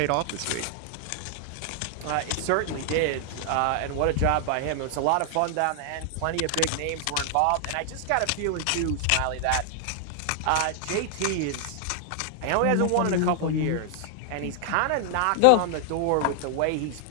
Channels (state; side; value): different; both; correlation 0.00